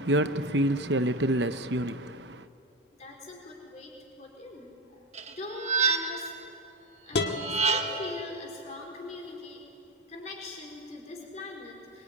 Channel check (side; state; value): both; normal; correlation 0.17